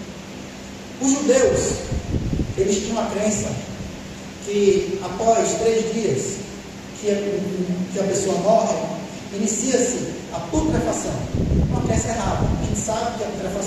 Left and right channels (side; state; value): both; identical; correlation 1.00